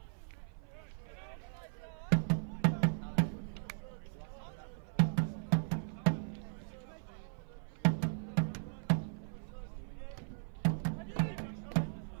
Alice with the block to put it out for a corner. Stevens will take.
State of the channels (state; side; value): silent; left; 52 dB below the other